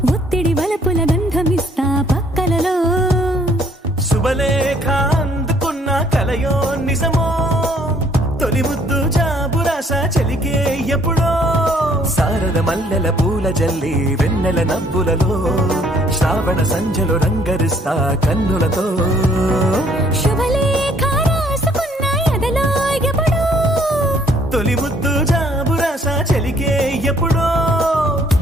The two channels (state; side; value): normal; both; correlation 0.63